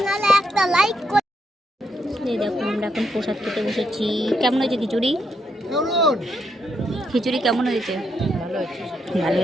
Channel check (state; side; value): normal; both; correlation 0.78